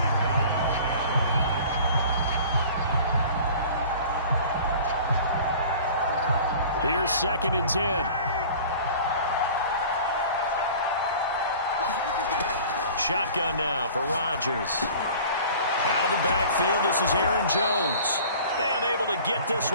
Here's 2nd and 10. Shotgun now for Rodgers. Out of the backfield, this is Aaron Jones. And able to get this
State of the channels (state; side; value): inverted; both; correlation -0.44